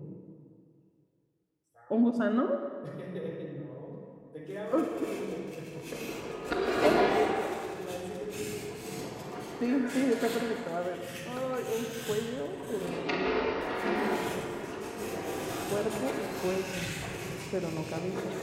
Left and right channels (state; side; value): identical; both; correlation 1.00